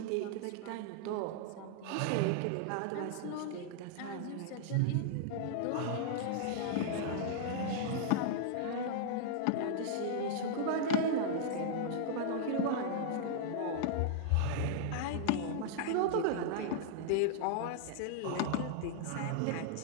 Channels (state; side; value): different; both; correlation -0.01